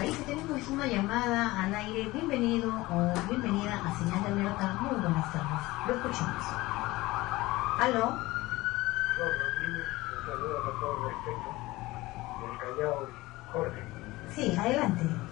Y tenemos una llamada al aire. Bienvenido o bienvenida a Señal de Alerta. Muy buenas tardes. Lo escuchamos. ¿Aló? Un saludo con todo respeto del Callao, Jorge. Sí, adelante,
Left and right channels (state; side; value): quieter; right; 19.6 dB